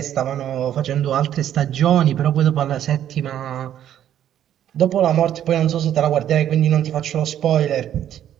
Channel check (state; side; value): quieter; left; 10.8 dB